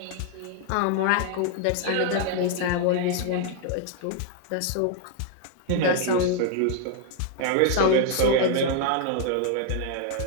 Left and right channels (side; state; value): both; different; correlation 0.00